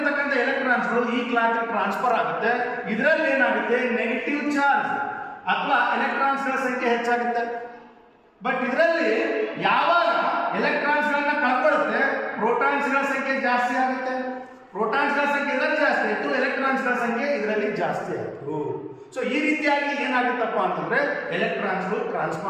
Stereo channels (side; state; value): both; identical; correlation 1.00